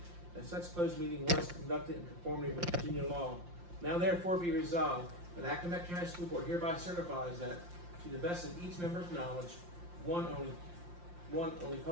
that such closed meeting was conducted in conformity with Virginia law. Now therefore be resolved that Accomack County School Board hereby certifies that, to the best of each member's knowledge, only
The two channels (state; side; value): late; left; 5.7 ms